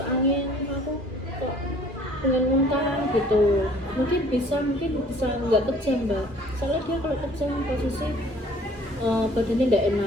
angin, aku kok pengen muntah gitu, mungkin bisa nggak kejang mbak. Soalnya dia kalau kejang posisi badannya nggak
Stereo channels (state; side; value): late; left; 2.4 ms